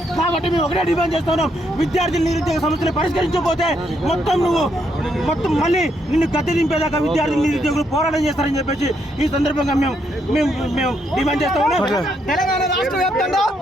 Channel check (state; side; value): normal; both; correlation 0.76